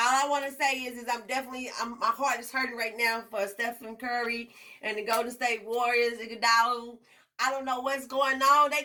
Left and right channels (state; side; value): identical; both; correlation 1.00